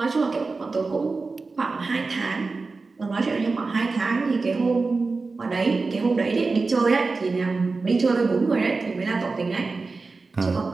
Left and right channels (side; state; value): left; quieter; 4.0 dB